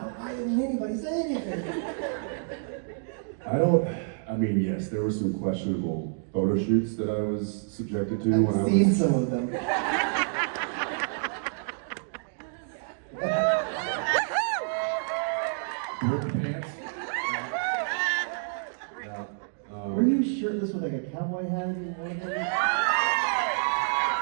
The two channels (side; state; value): left; silent; digital silence